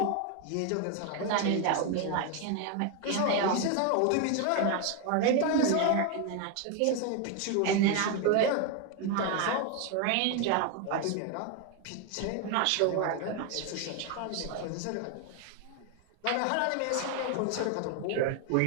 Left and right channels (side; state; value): both; different; correlation 0.01